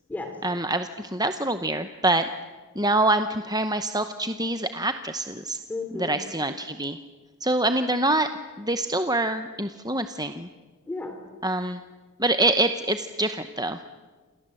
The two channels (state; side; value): normal; both; correlation 0.27